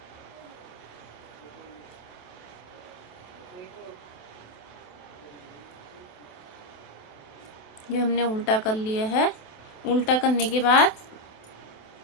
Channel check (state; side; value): late; right; 28 ms